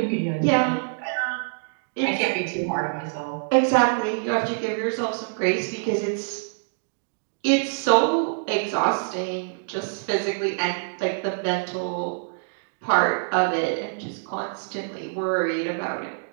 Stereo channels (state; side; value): silent; left; digital silence